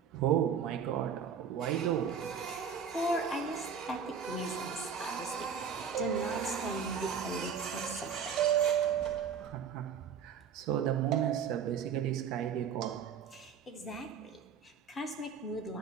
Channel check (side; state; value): left; quieter; 7.0 dB